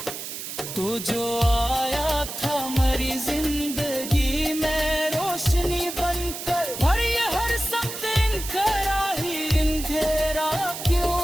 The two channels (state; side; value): noise; right; hiss, 8 dB below the sound